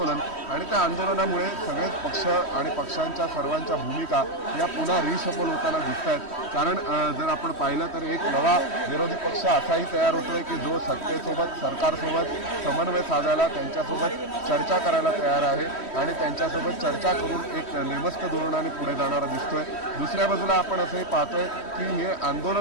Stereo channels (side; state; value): right; late; 3.1 ms